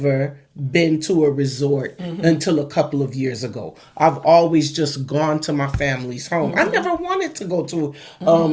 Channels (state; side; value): identical; both; correlation 1.00